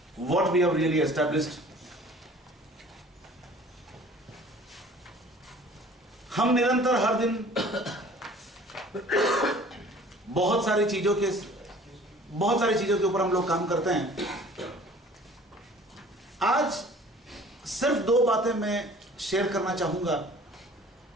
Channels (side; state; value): both; normal; correlation 0.49